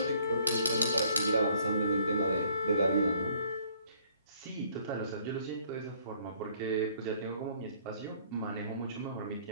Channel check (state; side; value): inverted; both; correlation -0.61